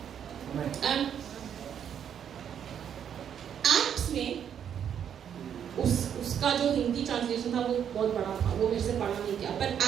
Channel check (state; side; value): quieter; left; 8.7 dB